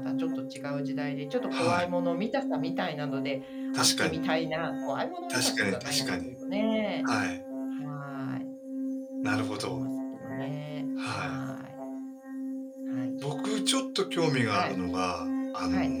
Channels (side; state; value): both; identical; correlation 1.00